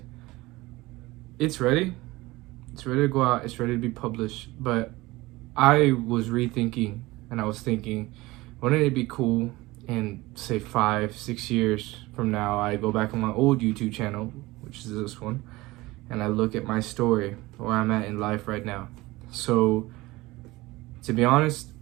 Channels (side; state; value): left; quieter; 20.1 dB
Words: it's ready. It's ready to go out. It's ready to be published. But I was rethinking, and I was thinking, wouldn't it be cool in say 5-6 years from now, I go back on my old YouTube channel, which is this one, and I look at my story, where I'm at in life right now. So to be honest,